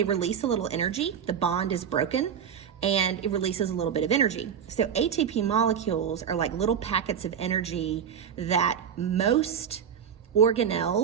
release a little energy. The bond is broken and it releases a little bit of energy. So ATP molecules are like little packets of energy that most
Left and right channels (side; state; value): left; quieter; 8.0 dB